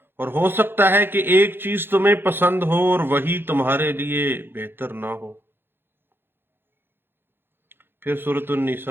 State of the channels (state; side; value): late; left; 0.10 ms